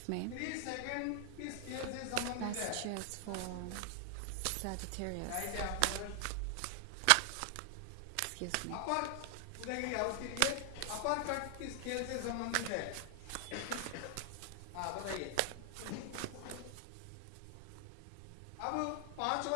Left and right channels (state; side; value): different; both; correlation 0.00